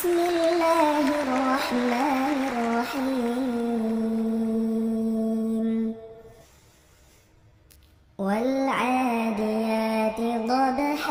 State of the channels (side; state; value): both; identical; correlation 1.00